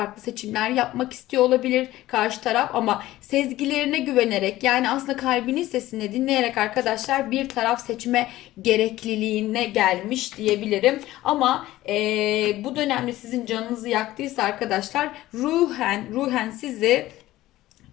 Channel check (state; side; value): quieter; right; 16.0 dB